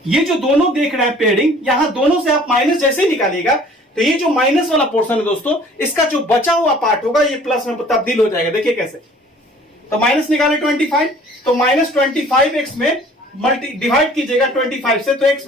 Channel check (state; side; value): normal; both; correlation 0.52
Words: ये जो दोनों देख रहे हैं पेयरिंग, यहां दोनों से आप माइनस जैसे ही निकालिएगा तो ये जो माइनस वाला पोर्शन है दोस्तों, इसका जो बचा हुआ पार्ट होगा ये प्लस में तब्दील हो जाएगा। देखिए कैसे, तो माइनस निकाले 25, तो माइनस 25 एक्स में डिवाइड कीजिएगा 25 से, तो एक्स